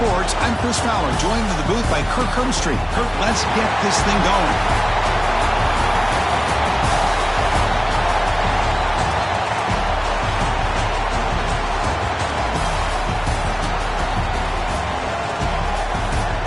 I'm Chris Fowler, joined in the booth by Kirk Herbstreit. Kirk, let's get this thing going.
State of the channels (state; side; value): identical; both; correlation 1.00